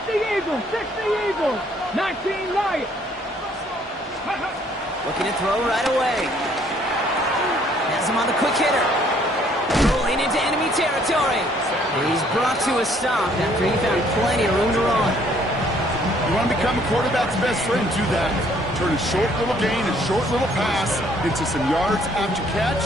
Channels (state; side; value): normal; both; correlation 0.63